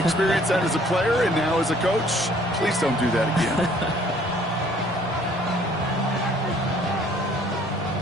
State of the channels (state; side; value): normal; both; correlation 0.58